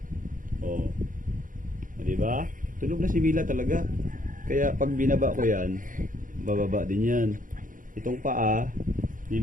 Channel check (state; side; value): late; left; 0.39 ms